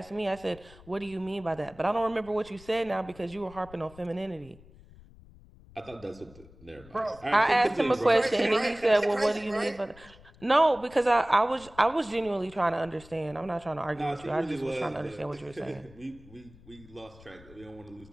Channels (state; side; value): noise; left; rumble, 22 dB below the sound